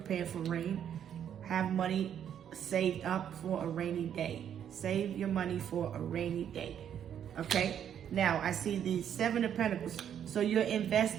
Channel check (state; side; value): quieter; left; 9.2 dB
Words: for rain. Have money saved up for a rainy day. Save your money for a rainy day. Okay? Now, I see the 7 of Pentacles. So you're